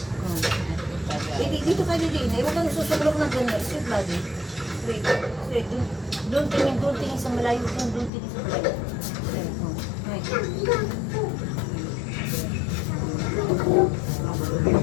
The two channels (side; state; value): right; drops out; at 8.1 s